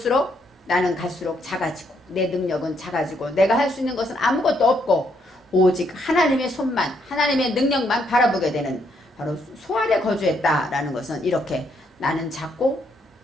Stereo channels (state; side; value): normal; both; correlation 0.74